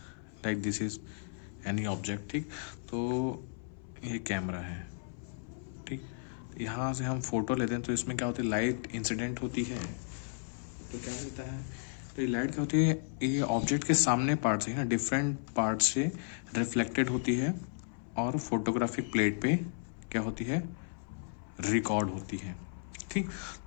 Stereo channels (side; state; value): right; silent; 55 dB below the other